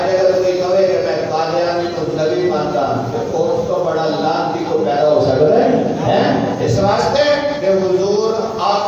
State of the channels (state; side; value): identical; both; correlation 1.00